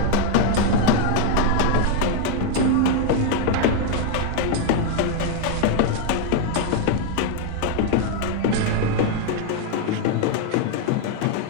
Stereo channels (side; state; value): both; different; correlation 0.00